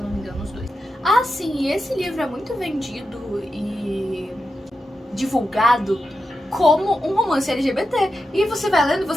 não me engano, os dois. Ah, sim, e esse livro é muito vendido e divulgado como um romance LGBT. E você vai lendo e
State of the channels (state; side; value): normal; both; correlation 0.89